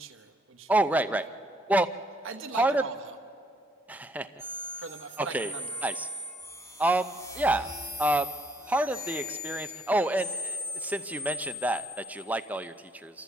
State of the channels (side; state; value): both; normal; correlation 0.68